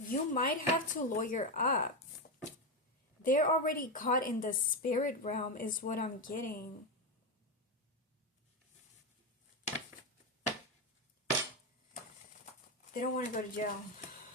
might have to lawyer up. They're already caught in the spirit realm is what I'm getting. They don't want to go to jail.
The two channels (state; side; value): normal; both; correlation 0.10